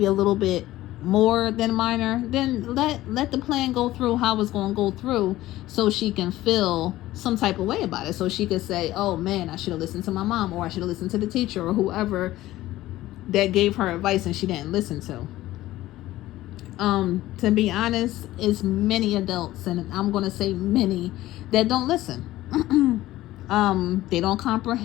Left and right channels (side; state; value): right; quieter; 15.9 dB